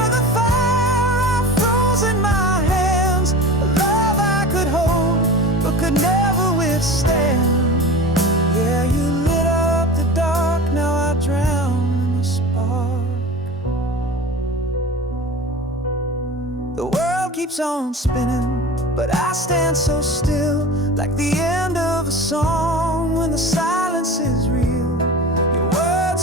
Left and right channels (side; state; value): both; normal; correlation 0.35